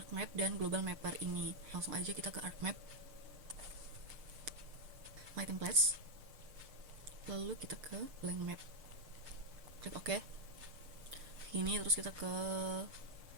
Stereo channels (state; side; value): late; left; 6.6 ms